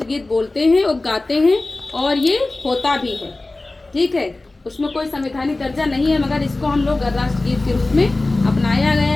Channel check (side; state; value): right; quieter; 3.0 dB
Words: बोलते हैं और गाते हैं, और ये होता भी है। ठीक है। उसमें कोई संवैधानिक दर्जा नहीं है, मगर इसको हम लोग राष्ट्रगीत के रूप में अपनाया